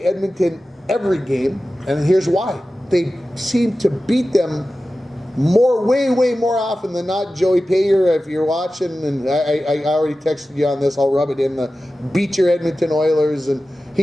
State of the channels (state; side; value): normal; both; correlation 0.95